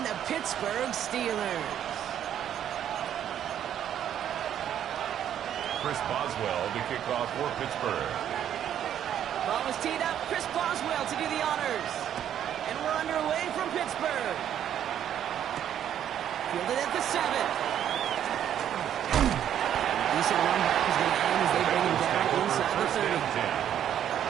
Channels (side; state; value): left; quieter; 10.1 dB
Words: the Pittsburgh Steelers. Chris Boswell to kick off for Pittsburgh. Ball was teed up. Chris Boswell to do the honors. And we're underway from Pittsburgh. Fielded at the 7. Decent run back is going to end as they bring him down inside the 30.